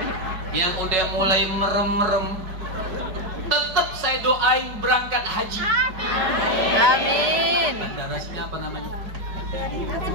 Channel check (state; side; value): late; left; 5.0 ms